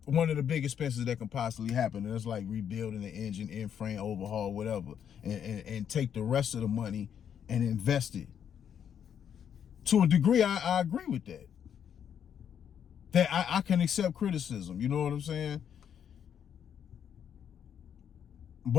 one of the big expenses that can possibly happen. And it's like rebuilding the engine, end frame, overhaul, whatever. And take the rest of the money and invest it. To a degree, I agree with that. That I can accept criticism, you know what I'm saying?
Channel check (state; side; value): quieter; right; 8.6 dB